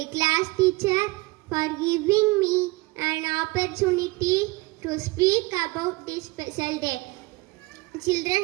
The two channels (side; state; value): left; quieter; 22.6 dB